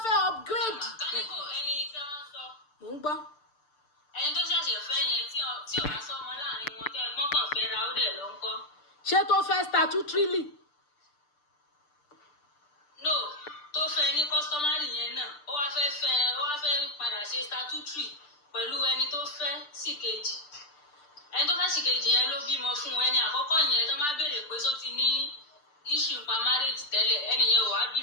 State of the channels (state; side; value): late; right; 6.7 ms